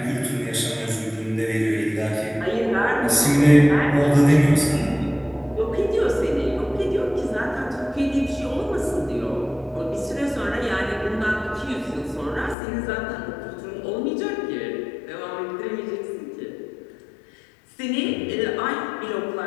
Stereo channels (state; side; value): drops out; right; at 12.6 s